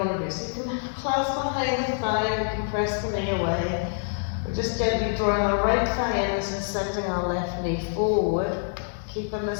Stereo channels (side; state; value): right; silent; digital silence